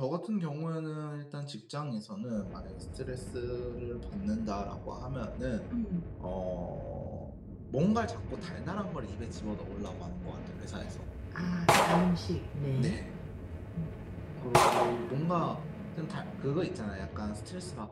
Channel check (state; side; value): identical; both; correlation 1.00